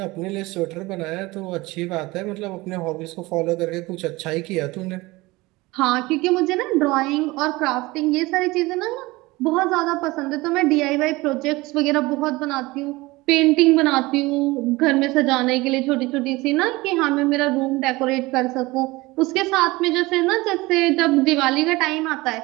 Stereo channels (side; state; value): left; quieter; 21.4 dB